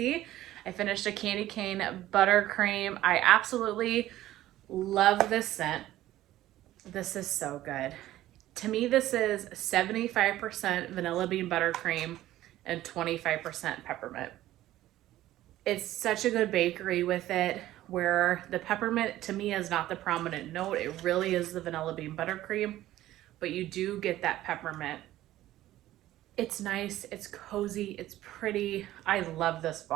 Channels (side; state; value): left; quieter; 14.6 dB